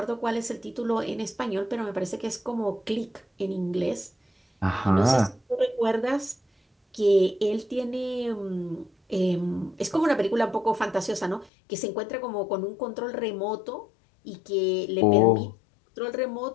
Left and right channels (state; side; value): drops out; right; at 11.5 s